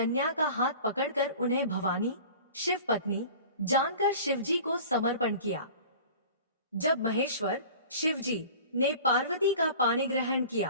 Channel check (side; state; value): both; inverted; correlation -0.42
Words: का हाथ पकड़कर उन्हें भवानी शिव पत्नी जानकर शिवजी को समर्पण किया। जब महेश्वर शिवजी ने पार्वती का पाणी ग्रहण